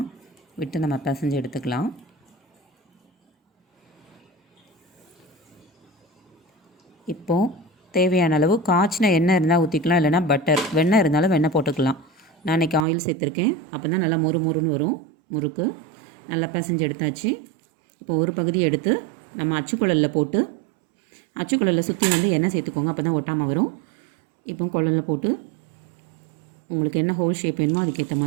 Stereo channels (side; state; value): left; drops out; at 12.9 s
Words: விட்டு நம்ம பிசைஞ்சு எடுத்துக்கலாம். இப்போது தேவையான அளவு காய்ச்சின எண்ணெய் இருந்தால் ஊற்றிக்கலாம், இல்லைனா பட்டர், வெண்ணெய் இருந்தாலும் வெண்ணெய் போட்டுக்கலாம். நான் இன்றைக்கி ஆயில் சேர்த்துருக்கேன். அப்போ தான் நல்லா மொறுன்னு வரும் முறுக்கு. நல்லா பிசைஞ்சு எடுத்தாச்சு. இப்போ ஒரு பகுதி எடுத்து நம்ம அச்சுக்குழலில் போட்டு அச்சுக்குழலில் சுற்றி எண்ணெய் சேர்த்துக்கோங்க, அப்போ தான் ஒட்டாமல் வரும். இப்போ குழலில் போட்டு உங்களுக்கு என்ன ஹோல் ஷேப் வேணுமோ அதுக்கேற்ற